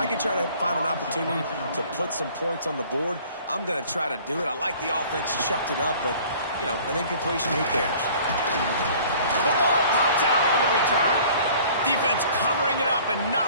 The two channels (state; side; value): inverted; both; correlation -0.51